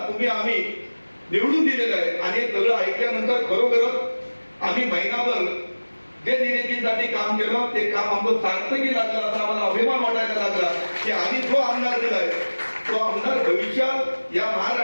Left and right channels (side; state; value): both; inverted; correlation -1.00